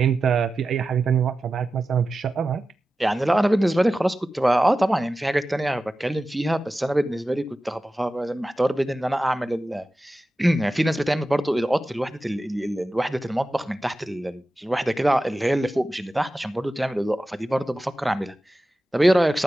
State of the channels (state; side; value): normal; both; correlation 0.94